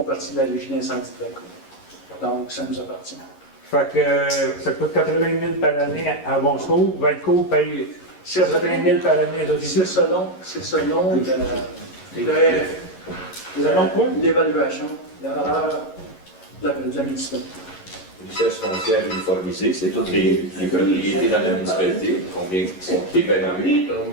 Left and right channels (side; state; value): right; late; 11 ms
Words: partie de la régie d'incendie de Valcourt. Donc, ça nous appartient. Fait que ça coûte 80 000 par année à Bon Secours. Valcourt paye 80 000 par année. C'est selon l'évaluation, la valeur de la municipalité. Richesse foncière uniformisée, c'est toutes les propriétés dans la municipalité, combien sont évaluées.